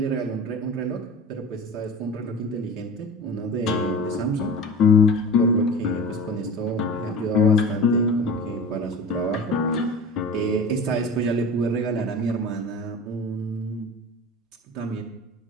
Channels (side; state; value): both; normal; correlation 0.35